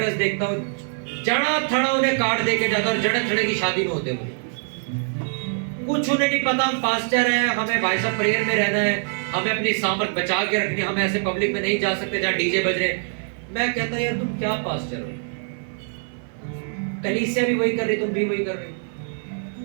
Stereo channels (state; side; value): silent; left; 57 dB below the other